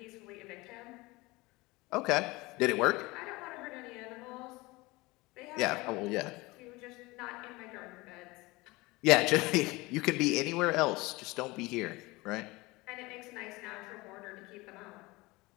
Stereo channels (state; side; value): quieter; right; 22.3 dB